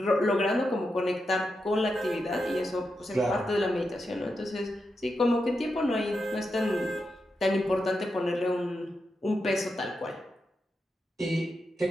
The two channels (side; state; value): both; normal; correlation 0.87